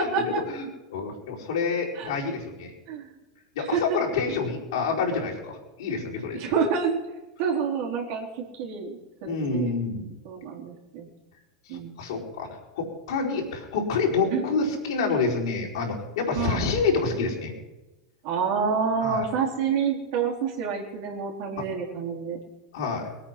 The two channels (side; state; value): both; normal; correlation -0.09